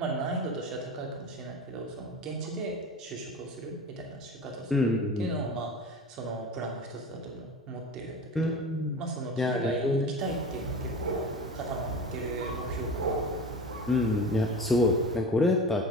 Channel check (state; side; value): normal; both; correlation 0.32